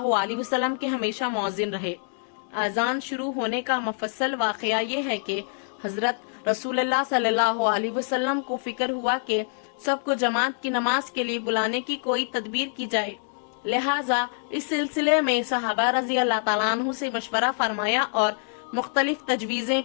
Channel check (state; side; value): silent; right; digital silence